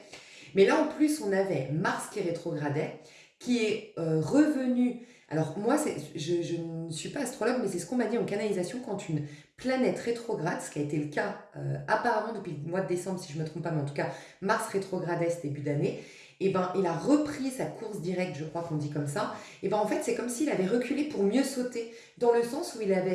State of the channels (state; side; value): identical; both; correlation 1.00